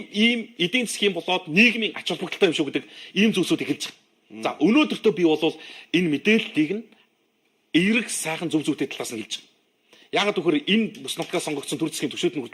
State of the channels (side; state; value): both; identical; correlation 1.00